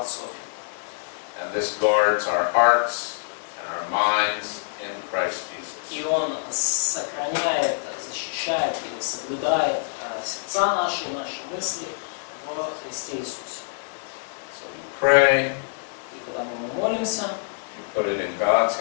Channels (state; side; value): silent; right; digital silence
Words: And this guards our hearts and our minds in Christ Jesus. И он сохраняет, защищает и соблюдает сердца наши и наши мысли в Христе Иисусе. So you pray, И потому мы молимся, you put it in God's